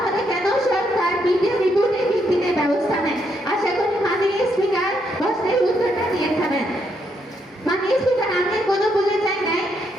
কেন সরকার মিডিয়া রিপোর্টের ভিত্তিতে ব্যবস্থা নেয়? আশা করি মাননীয় স্পিকার প্রশ্নের উত্তরটা দিয়ে থাকবেন। মাননীয় স্পিকার, আমি কোনো বলে চাই নাই,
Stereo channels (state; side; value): normal; both; correlation 0.76